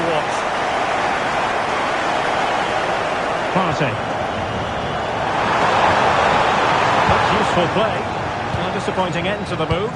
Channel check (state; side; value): identical; both; correlation 1.00